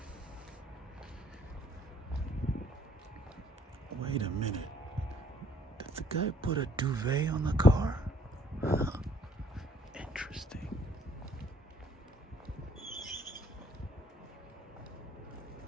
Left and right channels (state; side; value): normal; both; correlation 0.62